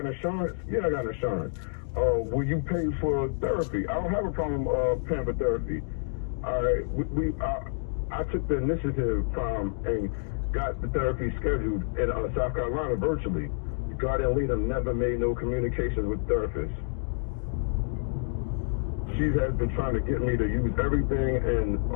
insurance? Yeah, I got insurance. Oh, will you pay for therapy? I don't have a problem paying for therapy. All right, I took the initiative and got the therapy scheduled in South Carolina virtually. The guardian leader never made no communications with therapists. She has been trying to get me to use everything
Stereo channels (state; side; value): silent; right; digital silence